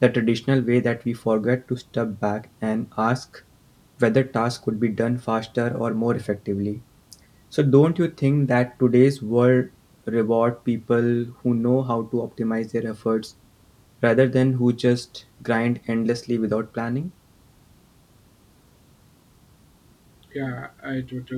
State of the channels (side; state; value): both; identical; correlation 1.00